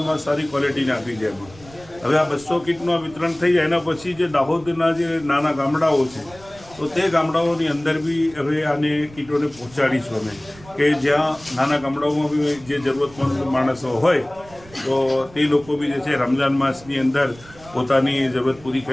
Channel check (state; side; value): noise; right; rumble, 22 dB below the sound